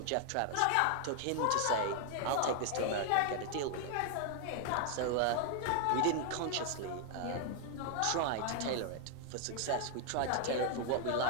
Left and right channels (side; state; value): both; different; correlation 0.00